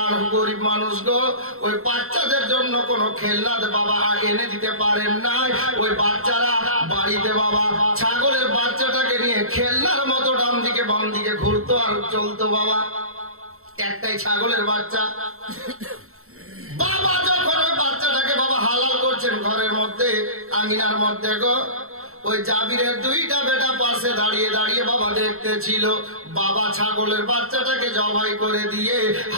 গরিব মানুষ গো, ওই বাচ্চাদের জন্য কোনো খেলনা বাবা এনে দিতে পারেন নাই। ওই বাচ্চারা বাড়িতে বাবা ছাগলের বাচ্চাটাকে নিয়ে খেলনার মতো ডান দিকে বাম দিকে ঘুরতো আর চলতো বাবা। একটাই ছাগলের বাচ্চা। বাবা যখন ওই বাচ্চাটাকে বাবা হালাল করছেন ঘরের মধ্যে, আঙিনার মধ্যে গো, ওই জাবিরের দুইটা বেটা পাশে দাঁড়িয়ে দাঁড়িয়ে বাবা দেখতেছিল। বাবা ছাগলের বাচ্চাটাকে জবাই করে দিয়ে,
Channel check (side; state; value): left; late; 0.63 ms